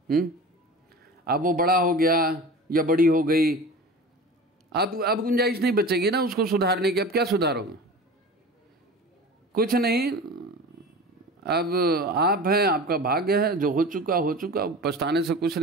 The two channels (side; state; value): both; normal; correlation 0.35